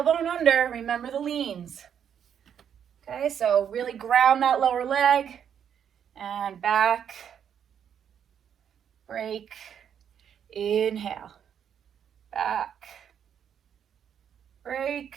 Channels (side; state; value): left; quieter; 8.5 dB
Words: under. Remember the leans. Okay, so really ground that lower leg. And back. Break. Inhale. Back. Break.